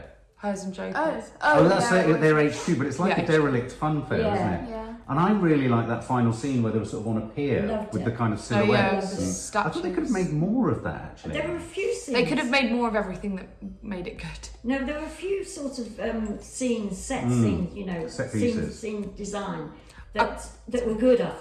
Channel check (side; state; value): both; identical; correlation 1.00